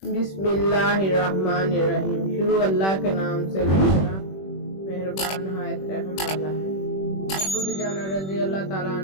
بسم اللہ الرحمن الرحیم۔ شروع اللہ کے نام سے اللہ مہربان نہایت رحم والا ہے۔ ابو دجانہ رضی اللہ تعالیٰ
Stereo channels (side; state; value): right; late; 21 ms